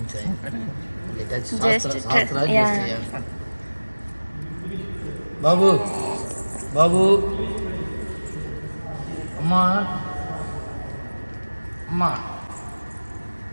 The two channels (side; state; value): both; inverted; correlation -1.00